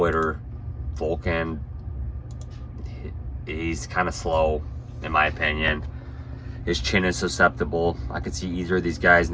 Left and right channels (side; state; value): both; identical; correlation 1.00